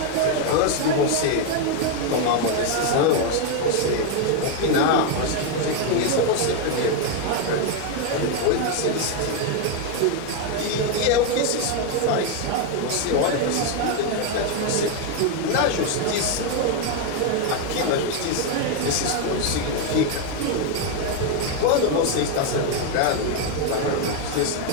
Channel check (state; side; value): different; both; correlation 0.01